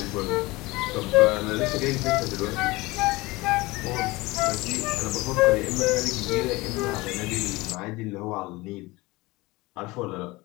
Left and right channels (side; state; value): right; quieter; 21.7 dB